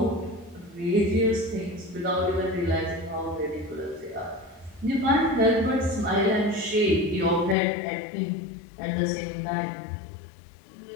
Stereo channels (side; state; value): right; drops out; at 7.6 s